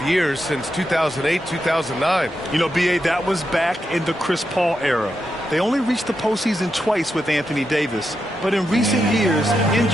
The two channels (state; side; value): normal; both; correlation 0.86